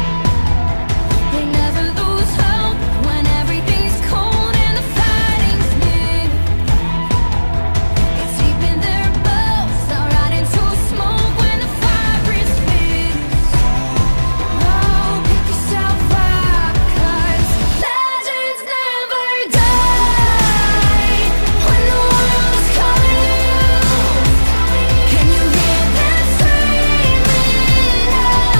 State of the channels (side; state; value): both; inverted; correlation -1.00